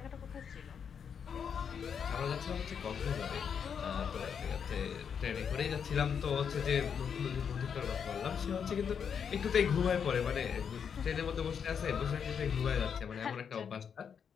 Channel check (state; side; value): quieter; right; 7.2 dB